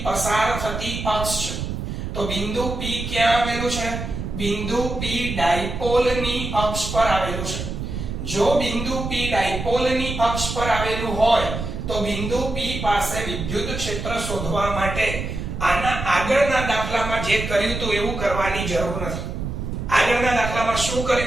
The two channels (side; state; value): right; noise; rumble, 5 dB below the sound